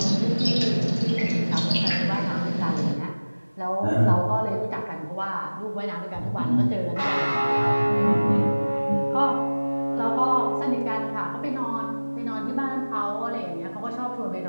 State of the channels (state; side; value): inverted; both; correlation -1.00